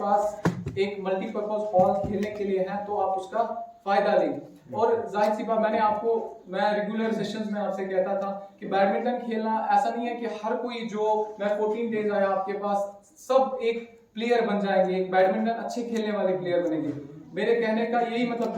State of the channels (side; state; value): both; identical; correlation 1.00